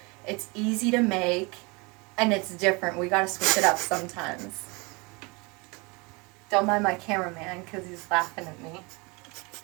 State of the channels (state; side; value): quieter; left; 27.7 dB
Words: It's easy to make and it's different. We gotta switch it up sometimes. Don't mind my cameraman because he's laughing at me.